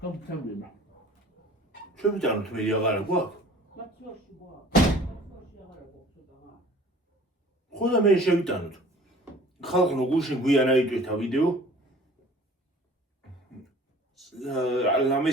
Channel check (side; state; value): both; normal; correlation 0.48